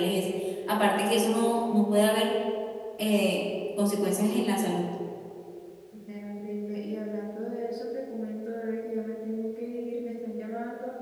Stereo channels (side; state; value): both; identical; correlation 1.00